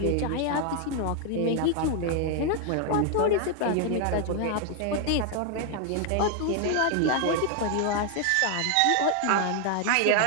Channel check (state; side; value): different; both; correlation 0.00